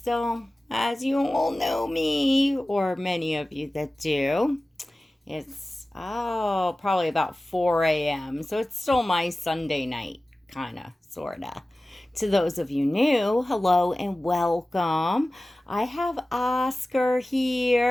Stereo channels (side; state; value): both; normal; correlation 0.96